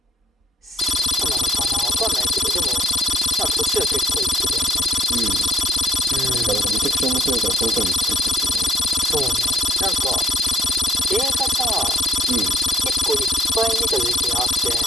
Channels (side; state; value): both; normal; correlation 0.68